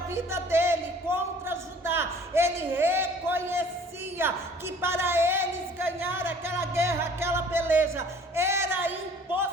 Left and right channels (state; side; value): normal; both; correlation 0.51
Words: dele, contra Judá, ele reconhecia dizia que para eles ganhar aquela guerra, aquela peleja, era